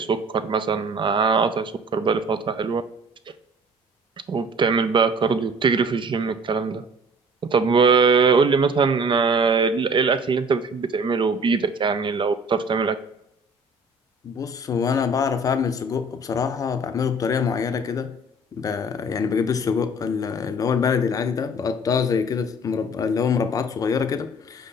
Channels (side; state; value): both; normal; correlation 0.49